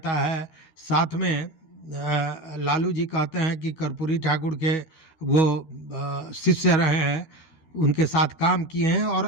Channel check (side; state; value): right; late; 12 ms